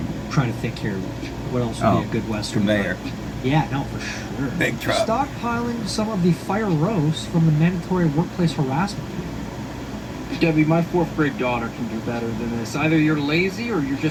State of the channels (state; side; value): identical; both; correlation 1.00